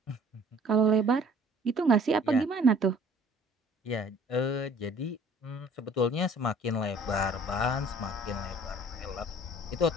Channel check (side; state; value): both; normal; correlation 0.53